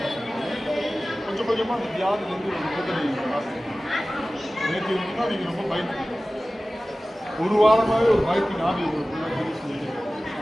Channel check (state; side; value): normal; both; correlation 0.97